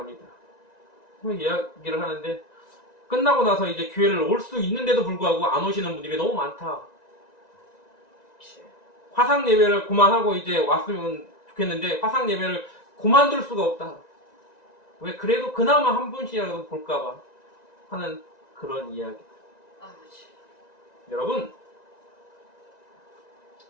이야기를 하는데 끝나고 나서 이제 교회를 올 수 있는데도 불구하고 안 오시는 분들이 너무 많다. 화상 예배를 그만하고 이제 왔으면 좋겠는데 화상 예배를 그만둘 수가 없다. 왜 그래도 그나마 한 분씩이라도 볼까봐 하는 그런 이야기. 여러분,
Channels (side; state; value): right; late; 1.9 ms